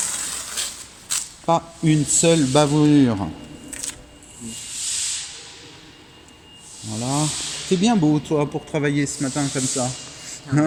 Pas une seule bavure. Voilà. C'est bien beau, toi, pour travailler ce matin comme ça.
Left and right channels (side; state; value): both; identical; correlation 1.00